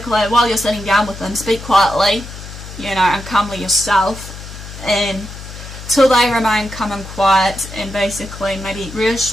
while you're sitting down with them, speak quietly, you know, and calmly yourself, and till they remain calm and quiet, and basically maybe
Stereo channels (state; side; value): noise; left; hum, 13 dB below the sound